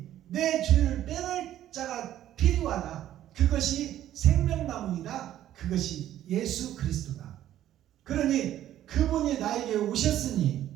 내 죄를 빼낼 자가 필요하다. 그것이 생명나무이다. 그것이 예수 그리스도다. 그러니 그분이 나에게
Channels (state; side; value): quieter; left; 12.3 dB